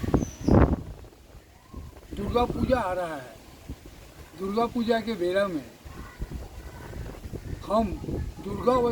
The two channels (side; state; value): both; identical; correlation 1.00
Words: दुर्गा पूजा आ रहा है। दुर्गा पूजा के बेला में हम